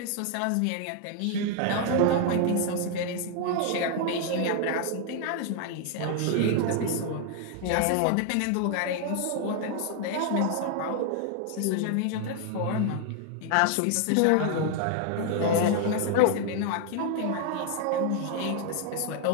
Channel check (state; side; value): different; both; correlation 0.00